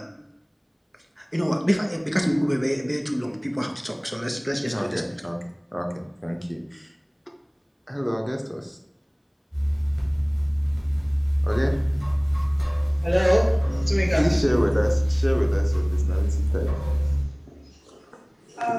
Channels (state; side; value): identical; both; correlation 1.00